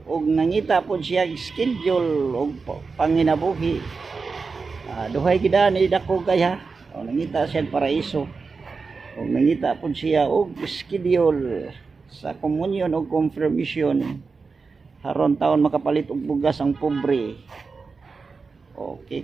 og nangita po siya schedule og panginabuhi. Duhay gid ni Dakugay ha. O nangita siya paraiso. Og nangita po siya og schedule sa communion og confirmation. Haron taon makapalit og bugas ang pobre.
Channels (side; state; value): left; quieter; 4.6 dB